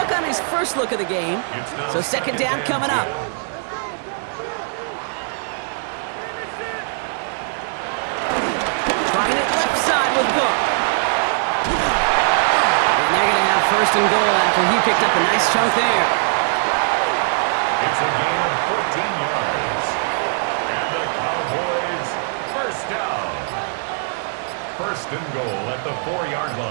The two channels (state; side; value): silent; left; digital silence